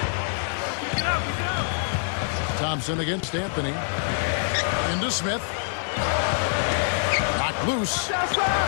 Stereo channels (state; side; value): silent; right; digital silence